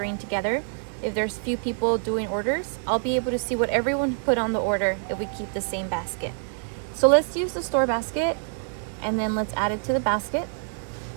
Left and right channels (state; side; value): silent; left; digital silence